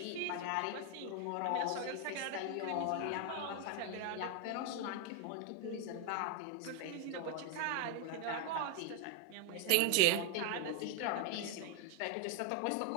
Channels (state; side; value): different; both; correlation 0.01